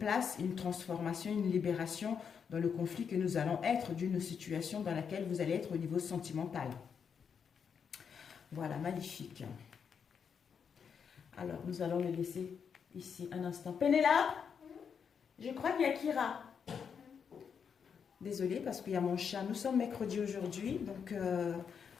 une transformation, une libération dans le conflit que nous allons être d'une situation dans laquelle vous allez être au niveau sentimental. Voilà, magnifique. Alors, nous allons le laisser ici un instant. Pénélope, je crois qu'il y a Kira. Désolée parce qu'il y a mon chat. Nous sommes mercredi aujourd'hui, donc il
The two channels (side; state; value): right; quieter; 6.8 dB